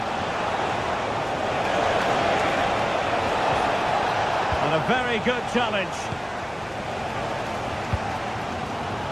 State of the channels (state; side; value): noise; left; hum, 25 dB below the sound